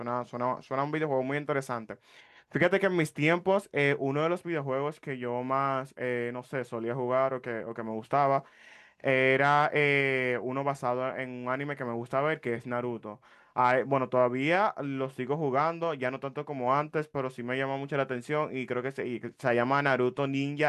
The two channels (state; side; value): identical; both; correlation 1.00